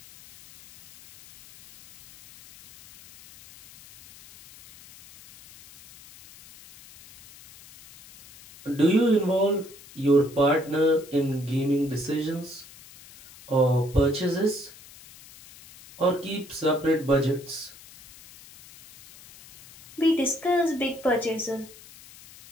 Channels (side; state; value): left; noise; hiss, 21 dB below the sound